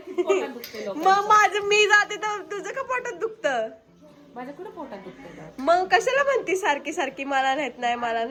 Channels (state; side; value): identical; both; correlation 1.00